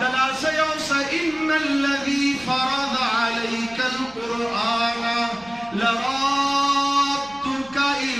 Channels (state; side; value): noise; right; rumble, 24 dB below the sound